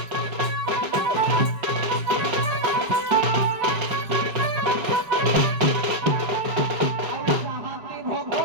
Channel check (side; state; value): left; late; 5.3 ms